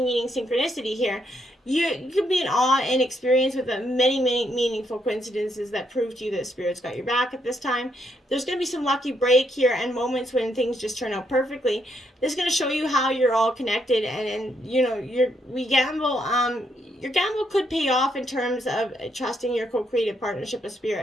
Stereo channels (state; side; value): normal; both; correlation 0.76